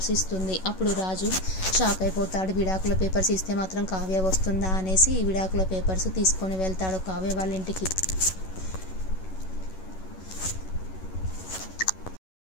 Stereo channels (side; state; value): right; late; 11 ms